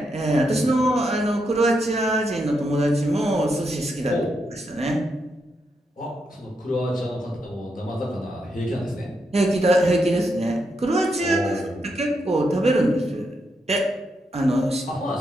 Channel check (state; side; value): normal; both; correlation 0.82